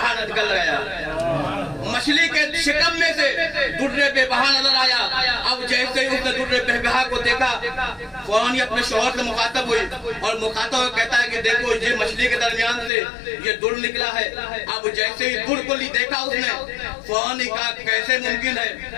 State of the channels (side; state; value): right; drops out; at 12.9 s